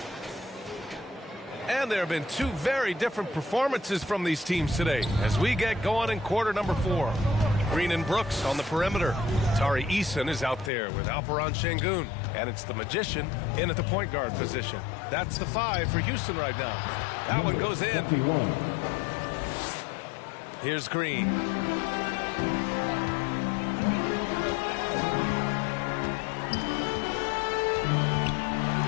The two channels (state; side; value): drops out; right; at 10.7 s